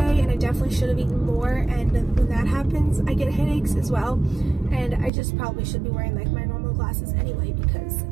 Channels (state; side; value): drops out; left; at 5.1 s